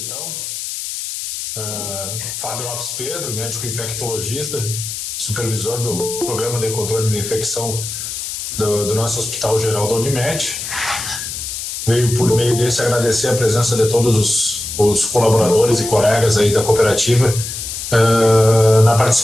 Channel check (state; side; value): noise; left; hiss, 6 dB below the sound